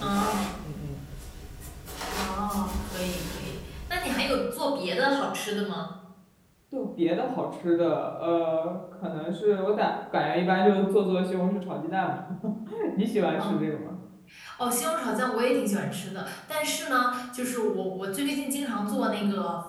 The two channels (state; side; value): identical; both; correlation 1.00